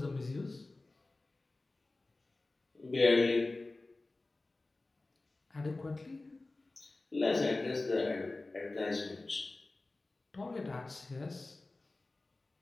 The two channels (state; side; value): quieter; right; 3.1 dB